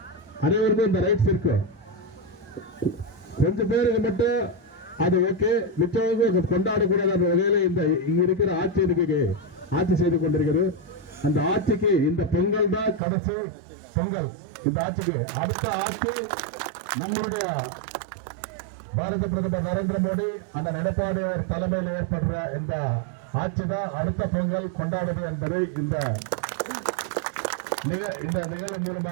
அனைவருக்கும் இந்த ரைட்ஸ் இருக்கு. கொஞ்சம் பேருக்கு மட்டும் அது ஓகே, மிச்சவங்க கொண்டாடக்கூடாத வகையில இந்த இங்க இருக்கிற ஆட்சி செய்து கொண்டிருக்கிறது. அந்த ஆட்சிக்கு இந்த பொங்கல் தான் கடைசி பொங்கல். இந்த ஆட்சிக்கு அடுத்த ஆட்சி நம்மளுடைய பாரத பிரதமர் நரேந்திர மோடி அந்த எடப்பாடி தலைமையில் ஏற்படுற இந்த ஆட்சி தான் அடுத்த பொங்கல் கொண்டாடுது என்பதை இந்த நிகழ்வு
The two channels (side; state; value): left; drops out; at 13.0 s